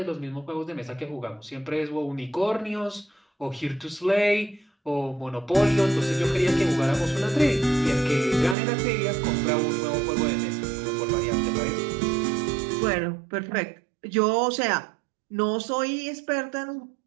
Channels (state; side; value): drops out; left; at 8.6 s